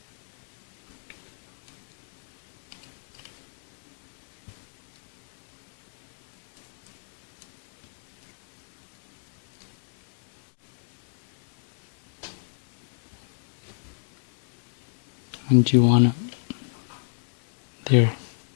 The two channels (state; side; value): silent; right; digital silence